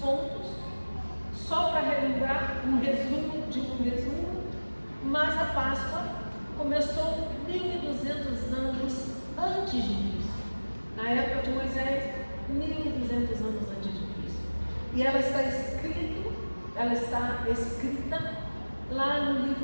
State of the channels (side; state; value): both; inverted; correlation -1.00